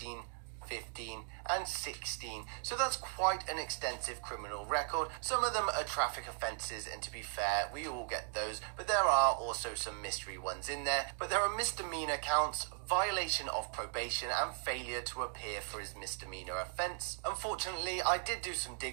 15 and 16. So that's quite an extensive criminal record. Some of them are traffic offences, and to be fair, we all get those, but there are also some mystery ones in there. But there are misdemeanor counts, violation of probation, and failure to appear for his misdemeanor offense. Unfortunately, I did do some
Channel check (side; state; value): left; silent; 53 dB below the other